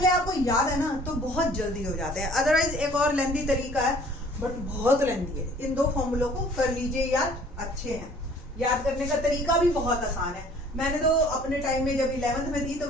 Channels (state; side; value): normal; both; correlation 0.53